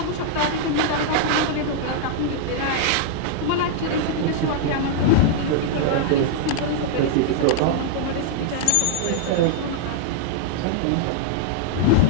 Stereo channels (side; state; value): both; different; correlation -0.01